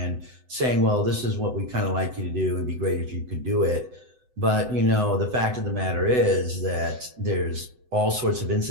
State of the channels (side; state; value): left; late; 7.9 ms